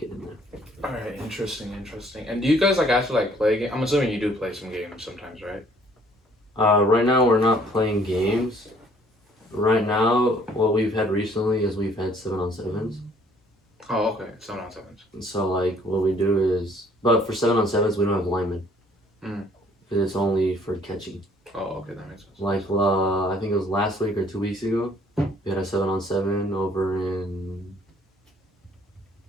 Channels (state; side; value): normal; both; correlation 0.60